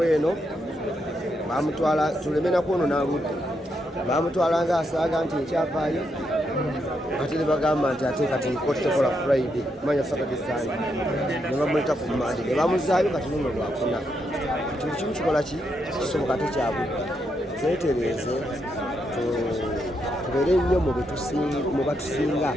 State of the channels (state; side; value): normal; both; correlation 0.80